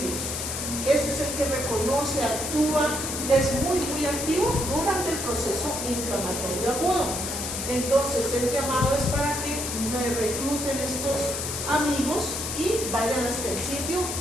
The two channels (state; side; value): noise; left; hiss, 4 dB below the sound